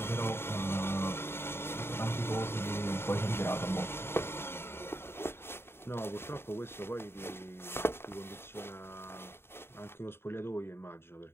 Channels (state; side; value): late; right; 0.11 ms